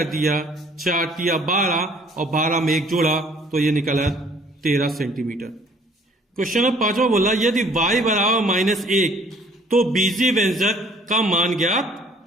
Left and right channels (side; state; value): both; normal; correlation 0.56